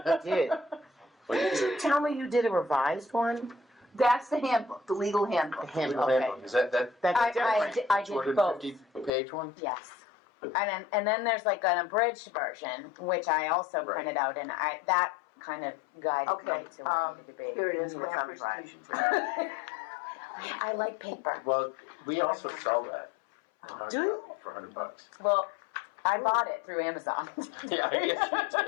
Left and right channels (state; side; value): drops out; right; at 9.1 s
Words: did. Did you tell me you did a revised one? That's the handbook, the legal handbook. Okay. Is that That's different. I did both. 250-page one? Yes. And then there's like an abridged version, which I also Right. printed out, and that kind of guided Okay, me to what I needed to be. here it is, You need a grant thumb drive. presentation. I like paper. Well, we also sell that. Do you? For $100. Well, I bought it through Amazon. Yeah, I guess